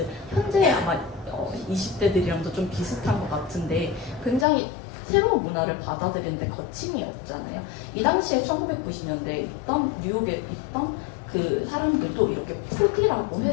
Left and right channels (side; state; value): right; drops out; at 4.5 s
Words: 현재 아마 20대들이랑도 좀 비슷한 것 같은데 굉장히 새로운 문화를 받아들이는데 거침이 없잖아요. 이 당시에 1990년대에 있던 뉴욕에 있던 그 사람들도 이렇게 푸디라고